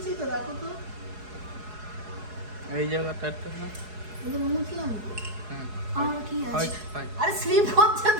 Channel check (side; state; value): left; late; 4.7 ms